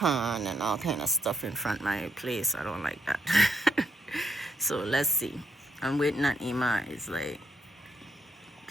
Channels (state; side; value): normal; both; correlation 0.75